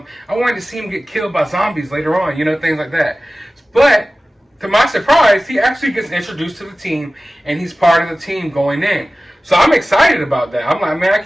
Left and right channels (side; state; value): both; normal; correlation 0.96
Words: I wanted to see him get killed by zombies later on, you know, things like that. But to my surprise, he actually gets introduced to the team, and he's part of the team going in. So I'm excited about that. I'm like, man, I